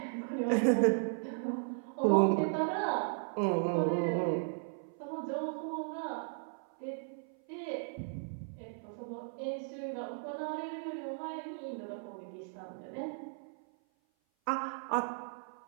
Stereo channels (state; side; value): silent; left; 54 dB below the other